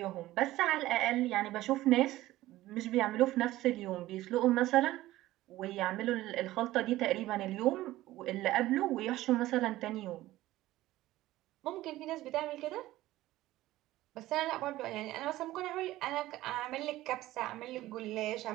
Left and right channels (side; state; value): left; quieter; 16.2 dB